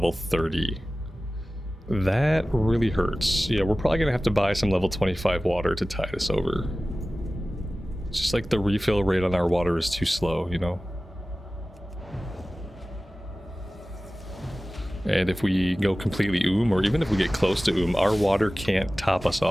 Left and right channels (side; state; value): both; normal; correlation 0.96